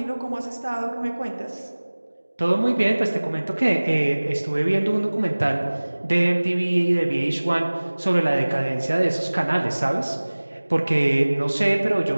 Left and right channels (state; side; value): inverted; both; correlation -1.00